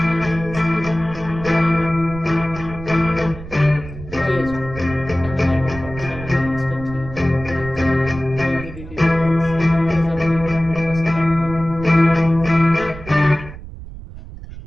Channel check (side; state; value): right; noise; rumble, 13 dB below the sound